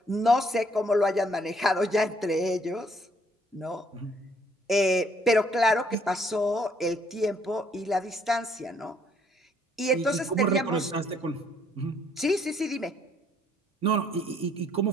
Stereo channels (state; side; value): normal; both; correlation 0.66